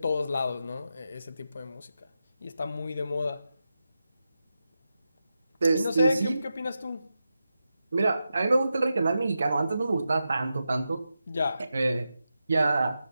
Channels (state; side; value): inverted; both; correlation -0.89